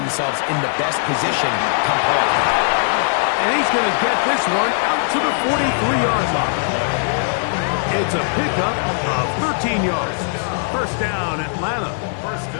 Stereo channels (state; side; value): silent; right; 66 dB below the other